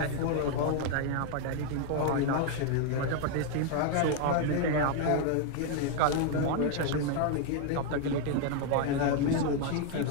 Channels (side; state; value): both; different; correlation 0.00